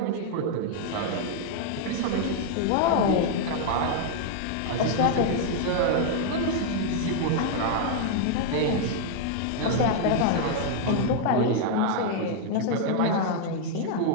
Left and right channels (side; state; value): both; different; correlation 0.00